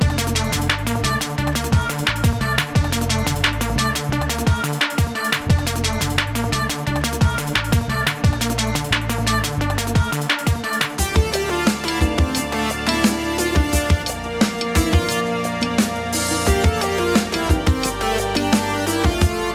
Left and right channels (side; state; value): both; identical; correlation 1.00